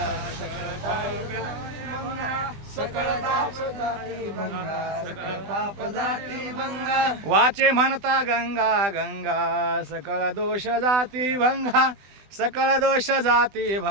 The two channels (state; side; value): late; left; 20 ms